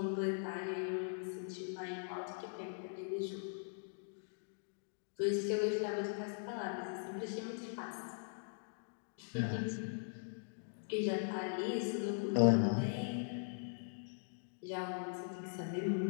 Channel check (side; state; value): right; silent; digital silence